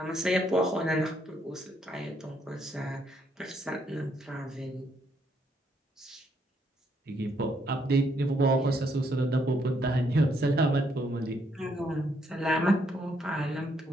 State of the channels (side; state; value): both; normal; correlation 0.73